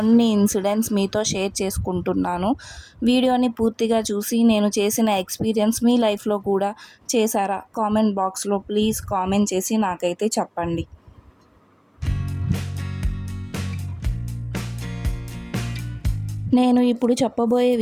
ఇన్సిడెంట్స్ మీతో షేర్ చేసుకుంటున్నాను. వీడియోని పూర్తిగా చూసి నేను చేసిన ఎక్స్పీరియన్స్ మీ లైఫ్లో కూడా చేశారా? కామెంట్ బాక్స్లో ప్లీజ్ కామెంట్ చేసి నాకైతే చెప్పండి. నేను ఇప్పుడు చెప్పబోయే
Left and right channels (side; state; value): both; identical; correlation 1.00